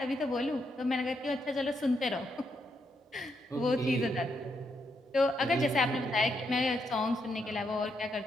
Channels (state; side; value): normal; both; correlation 0.79